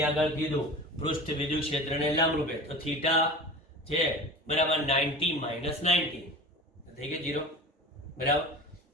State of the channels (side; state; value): both; normal; correlation 0.35